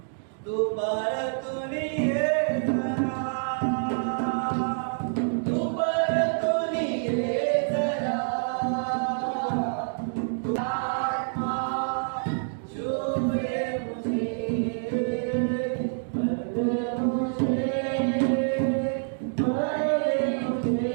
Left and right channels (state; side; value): silent; left; digital silence